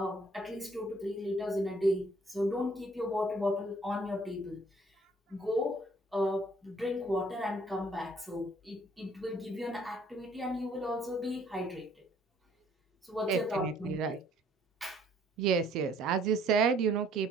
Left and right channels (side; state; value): both; normal; correlation 0.61